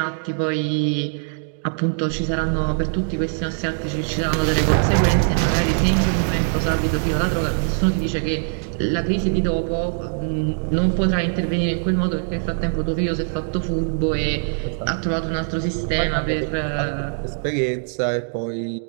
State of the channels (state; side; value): silent; left; 64 dB below the other